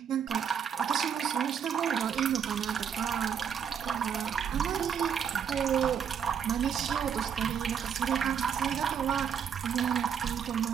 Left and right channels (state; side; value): quieter; left; 7.7 dB